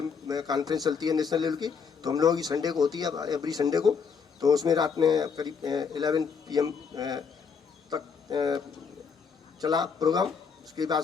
कॉन्फ्रेंस चलती है नेशनल लेवल की, तो हम लोगों की संडे को होती है, एवरी संडे को। तो उसमें रात में करीब 11 PM तक चला प्रोग्राम। उसके बाद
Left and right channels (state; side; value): quieter; right; 6.0 dB